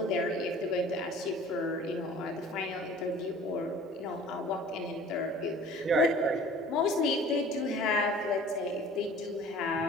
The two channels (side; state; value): both; normal; correlation 0.47